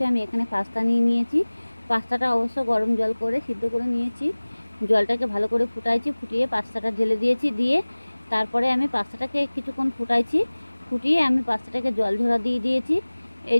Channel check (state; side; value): inverted; both; correlation -1.00